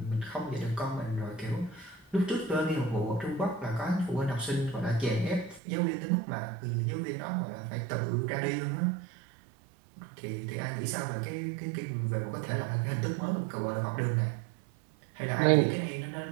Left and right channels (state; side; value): drops out; left; at 5.6 s